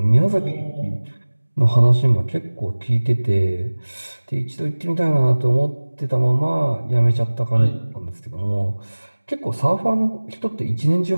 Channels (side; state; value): both; inverted; correlation -1.00